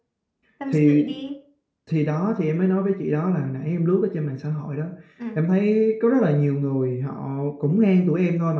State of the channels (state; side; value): identical; both; correlation 1.00